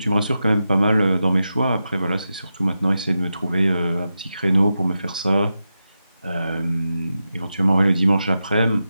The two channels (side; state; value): both; inverted; correlation -0.90